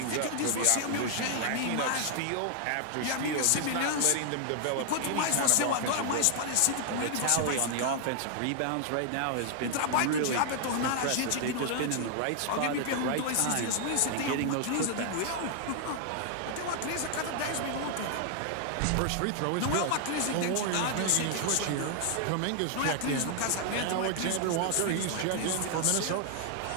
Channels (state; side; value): different; both; correlation 0.00